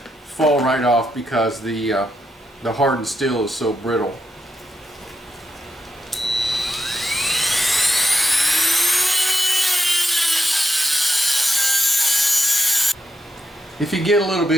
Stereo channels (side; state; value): both; normal; correlation 0.84